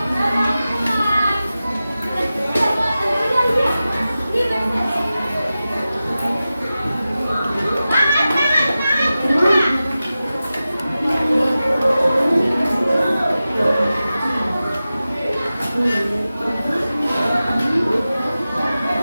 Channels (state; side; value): inverted; both; correlation -0.94